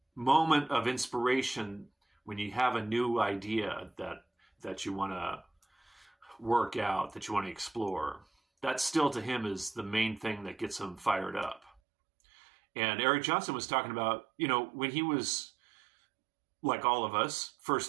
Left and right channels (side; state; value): left; drops out; at 11.8 s